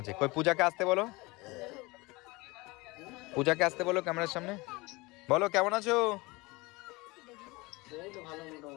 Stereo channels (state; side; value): quieter; right; 23.6 dB